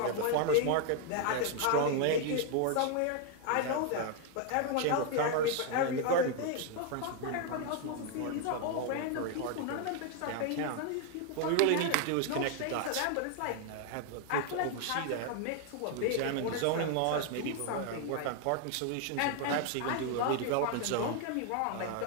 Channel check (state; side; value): different; both; correlation 0.00